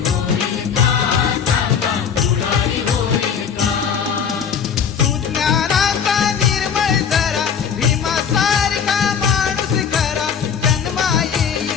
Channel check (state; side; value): quieter; right; 7.2 dB